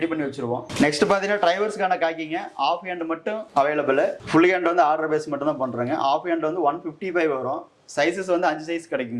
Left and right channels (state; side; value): identical; both; correlation 1.00